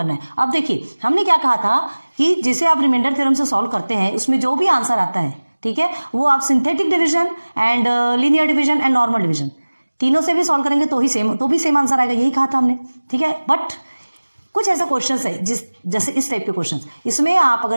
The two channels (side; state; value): both; inverted; correlation -1.00